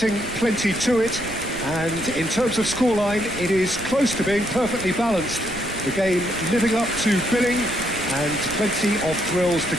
plenty to it. And in terms of scoreline, it is close to being perfectly balanced. The game living up to billing and plenty of thrills to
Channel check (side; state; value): right; noise; rumble, 14 dB below the sound